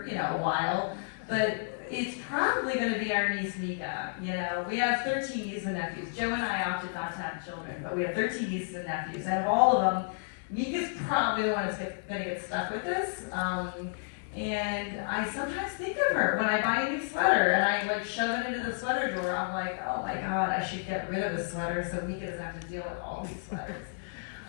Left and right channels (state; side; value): silent; right; digital silence